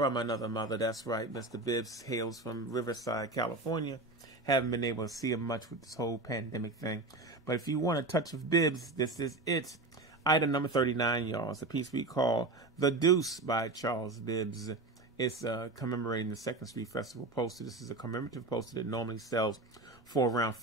another mother. That's right. Mr. Bibbs hails from Riverside, California. Haven't been able to see him much with this whole pandemic thing. But if you want a touch of Bibbs, this is it. Item number 39, y'all. It's a piece we call The Deuce by Charles Bibbs. It's commemorating the 2nd Street Festival poster. This is a commemorative poster that normally sells for around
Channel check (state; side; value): quieter; left; 3.2 dB